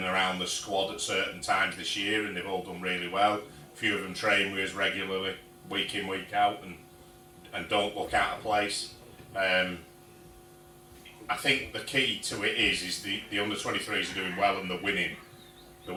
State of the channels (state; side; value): identical; both; correlation 1.00